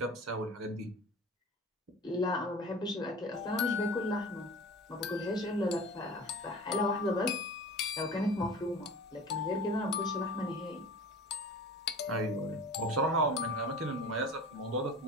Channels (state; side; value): normal; both; correlation 0.38